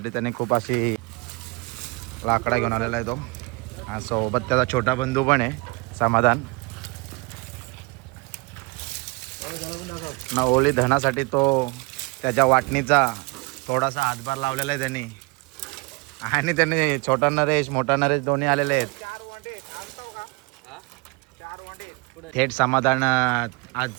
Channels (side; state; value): left; quieter; 27.9 dB